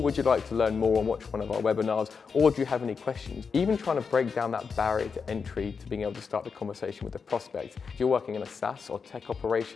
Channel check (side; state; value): right; quieter; 5.6 dB